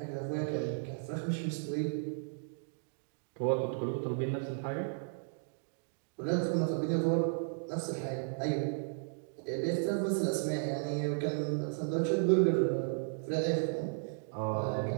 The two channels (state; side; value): silent; left; digital silence